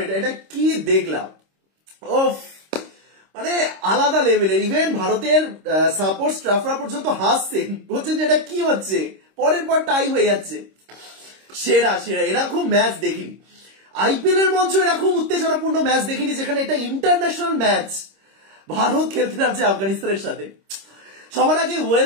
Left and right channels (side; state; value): left; late; 26 ms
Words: এটা, এটা কি দেখলাম। ওফ, মানে আলাদা লেভেলের। ইভেন ভারতের সাপোর্ট স্টাফরা পর্যন্ত হাসছেন, বলছেন যে এটা কি হচ্ছে, পরের পর টাই হয়ে যাচ্ছে। সেরা সেরা, এরকম ম্যাচ দেখিনি। আইপিএল এর মঞ্চ এরকম উত্তেজনাপূর্ণ ম্যাচ দেখিনি, যেখানে এটা ইন্টারন্যাশনাল ম্যাচ। ভারত খেলতে নামছে আফগানিস্তানের সাথে। সবার আগে